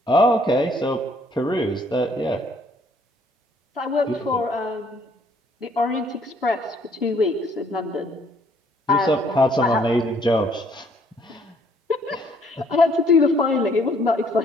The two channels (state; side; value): normal; both; correlation 0.64